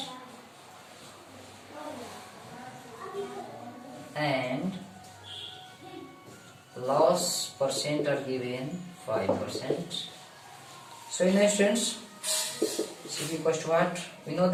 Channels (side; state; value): both; identical; correlation 1.00